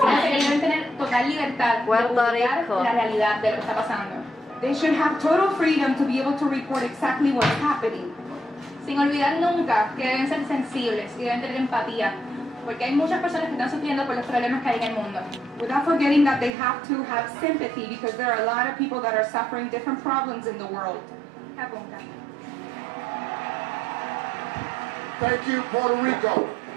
Deben tener total libertad de publicar la realidad de lo que está pasando. They should have total freedom to be able to report exactly what's happening. Sin olvidar nunca que deben ser sensibles y deben tener empatía, porque hay muchas personas que están sufriendo por los problemas que hay en el mundo. Without forgetting that they have to have sympathy because there are a lot of people that are suffering different problems in the world. Apunta. Thank you, Puerto Rico.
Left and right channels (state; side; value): drops out; left; at 16.5 s